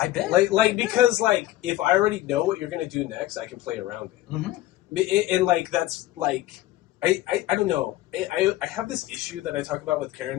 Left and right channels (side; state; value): right; quieter; 15.6 dB